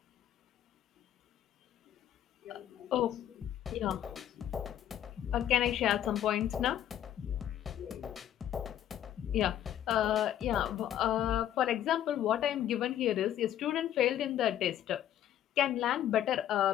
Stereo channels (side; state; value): right; quieter; 11.1 dB